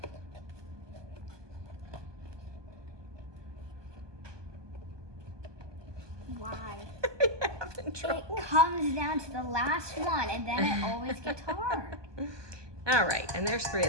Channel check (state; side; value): late; left; 1.2 ms